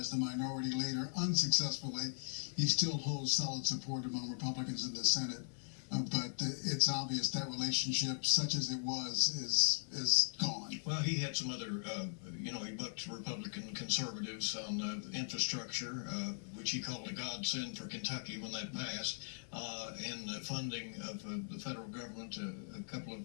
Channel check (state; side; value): silent; right; 52 dB below the other